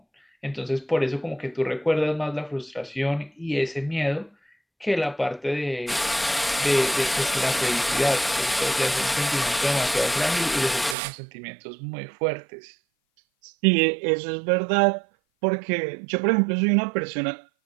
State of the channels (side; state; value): left; drops out; at 11.0 s